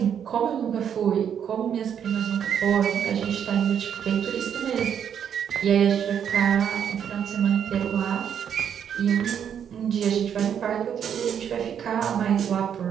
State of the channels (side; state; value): left; quieter; 8.5 dB